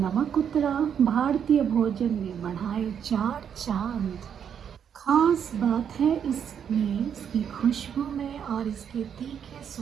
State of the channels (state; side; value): quieter; left; 8.1 dB